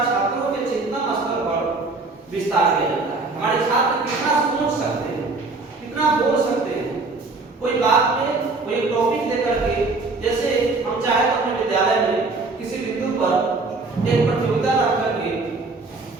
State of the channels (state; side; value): quieter; left; 3.6 dB